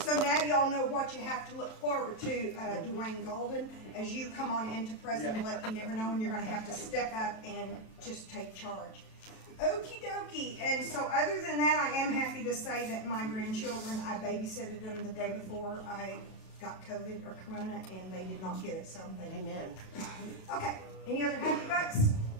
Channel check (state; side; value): late; right; 37 ms